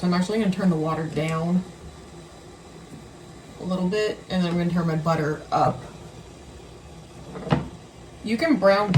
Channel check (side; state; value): both; identical; correlation 1.00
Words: I'm actually going to turn the water down a little bit, and then I'm going to turn my butter up. You can brown